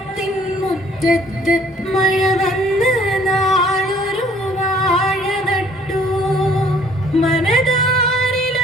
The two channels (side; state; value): both; normal; correlation 0.59